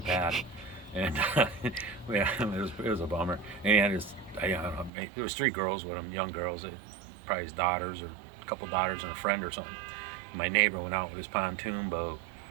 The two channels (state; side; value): drops out; left; at 4.9 s